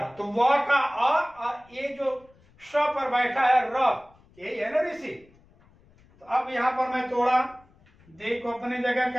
तो व का और ये जो श पर बैठा है र, यही है ना ऋषि। तो अब यहां पर मैं तोड़ा, दे को अपने जगह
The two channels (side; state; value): left; noise; rumble, 30 dB below the sound